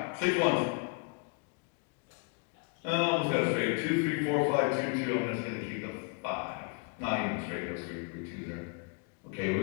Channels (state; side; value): quieter; right; 34.4 dB